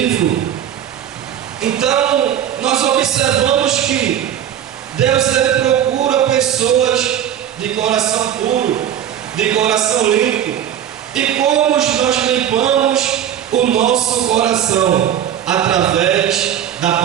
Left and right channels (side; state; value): left; quieter; 10.2 dB